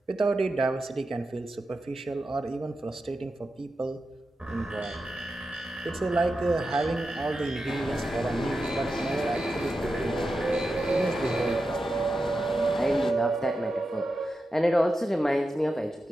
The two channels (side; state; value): both; normal; correlation 0.90